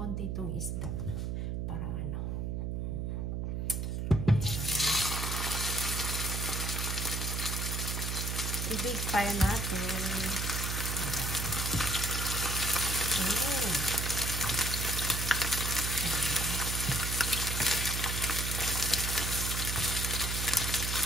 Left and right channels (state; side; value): noise; right; hum, 1 dB below the sound